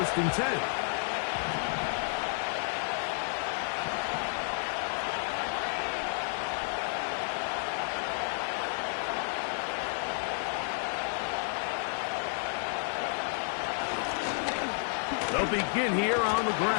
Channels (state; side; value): silent; right; 57 dB below the other